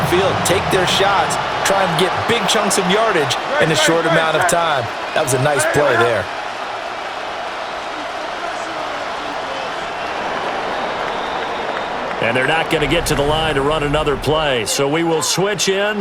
take their shots, try and get big chunks of yardage in a short amount of time. That was a nice play there. And they're not going to get to the line to run another play. So we will switch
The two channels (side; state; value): both; identical; correlation 1.00